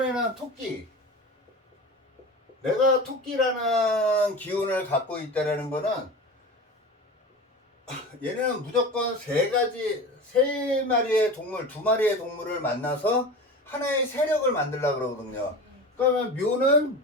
토끼. 내가 토끼라는 기운을 갖고 있다는 거는 얘는 무조건 세 마리의 동물, 두 마리의 동물을 만나서 하나의 세력을 만들려고 그러거든요. 그러면 묘는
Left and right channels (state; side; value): normal; both; correlation 0.31